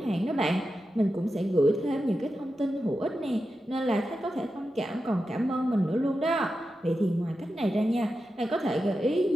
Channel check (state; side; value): normal; both; correlation 0.90